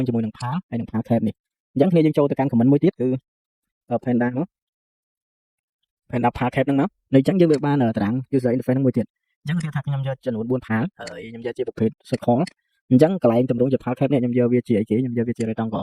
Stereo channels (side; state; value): both; identical; correlation 1.00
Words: ជាមួយនឹង PAL ហើយនឹង PAL cap នេះអញ្ចឹងគ្នាយើងចូលទៅកាន់ comment មួយទៀតគឺ Panda មក Panda PAL cap ហ្នឹងមកនៅអញ្ចឹងយើងវាបានតារាង user interface ហ្នឹងមួយទៀតអញ្ចឹងគេថាខ្ញុំយកចំនួន4 PAL ហើយខ្ញុំយកជាប្រភេទ circle អញ្ចឹងកន្លែងតម្រង់ជា PAL cap នេះខ្ញុំយកវាជាអីគេខ្ញុំយកវាជា